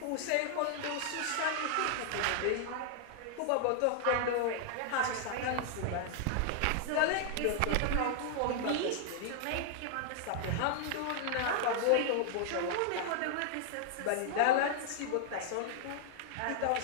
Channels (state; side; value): different; both; correlation -0.01